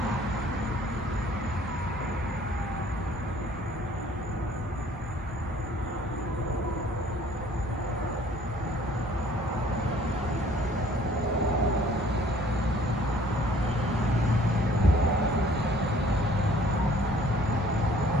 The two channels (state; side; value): normal; both; correlation 0.56